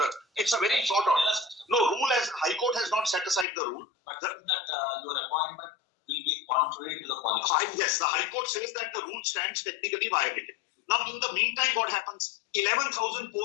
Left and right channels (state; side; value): drops out; right; at 3.5 s